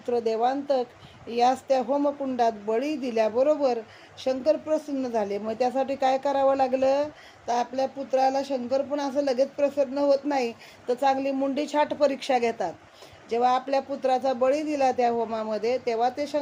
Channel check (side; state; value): both; identical; correlation 1.00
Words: देवांतक यास त्या होमकुंडात बळी दिल्याबरोबर शंकर प्रसन्न झाले. मग त्यासाठी काय करावं लागलं, तर आपल्या पुत्राला शंकर पण असं लगेच प्रसन्न होत नाही, तर चांगली मुंडी छाट परीक्षा घेतात. जेव्हा आपल्या पुत्राचा बळी दिला त्या होमामध्ये, तेव्हा ते